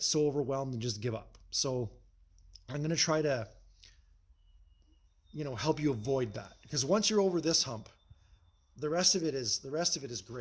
so overwhelmed and just give up. So I'm going to try to help you avoid that, because once you're over this hump, the rest of it is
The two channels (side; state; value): both; identical; correlation 1.00